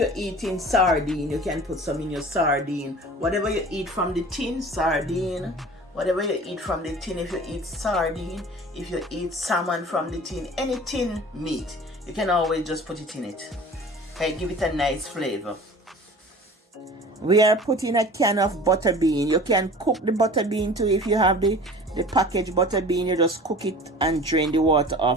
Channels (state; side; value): normal; both; correlation 0.42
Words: eating sardine, you can put some in your sardine. Whatever you eat from the tin, sardine. Whatever you eat from the tin, if you eat sardine, if you eat salmon from the tin, any tin meat, you can always just put it in it. Okay, give it a nice flavor. We are putting a can of butter bean. You can cook the butter bean too. If you have the packaged butter bean, you just cook it and drain the water